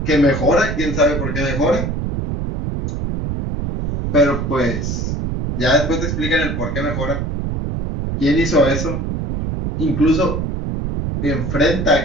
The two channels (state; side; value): noise; right; rumble, 2 dB below the sound